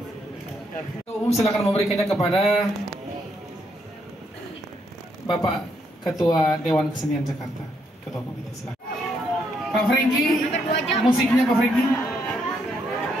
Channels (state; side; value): normal; both; correlation 0.75